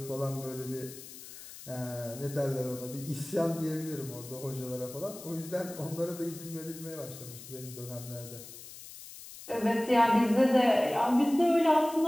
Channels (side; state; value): left; noise; hiss, 15 dB below the sound